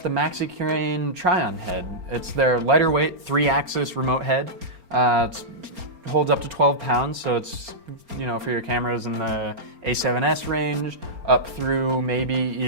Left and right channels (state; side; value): late; left; 4.3 ms